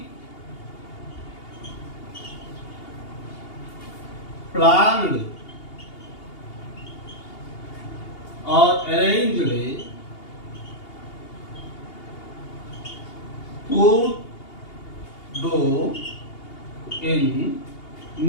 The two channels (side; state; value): right; late; 2.8 ms